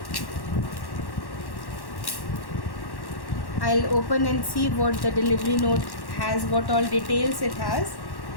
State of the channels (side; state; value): right; late; 1.1 ms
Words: I'll open and see what the delivery note has, what all details it has.